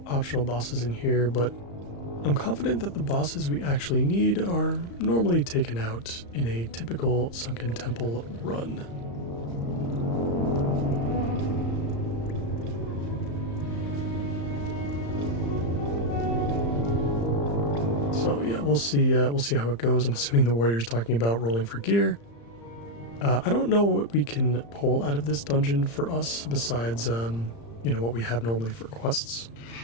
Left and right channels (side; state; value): right; late; 35 ms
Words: bosses in here, but I'm confident that the bosses we actually need are normally taken out in a typical Sunken Temple run. So yeah, we'll see how it goes. I'm assuming the warrior's talking about rolling for gear. I don't know what we can pull out of this dungeon for us besides, what we have normally for quests.